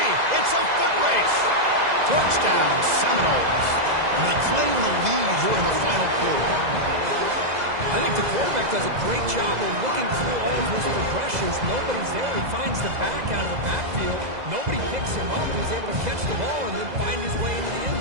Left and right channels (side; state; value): left; late; 2.0 ms